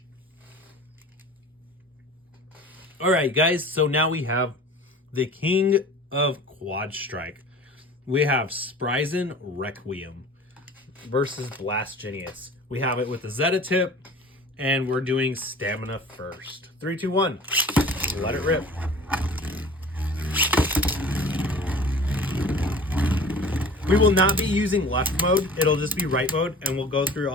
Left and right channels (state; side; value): normal; both; correlation 0.42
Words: All right, guys, so now we have the king of Quad Strike. We have Spryzen Requiem versus Blast Jinnius. We have it with the Zeta tip, and we're doing stamina first. 3, 2, 1, let it rip. We will not be using left mode. It'll just be right mode, and we'll go through